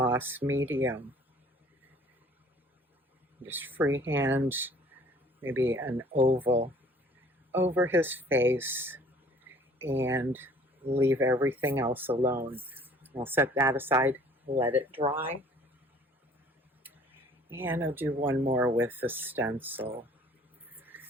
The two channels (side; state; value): both; normal; correlation 0.53